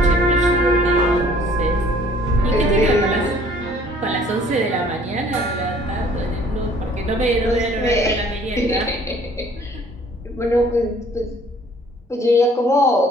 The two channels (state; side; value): normal; both; correlation 0.56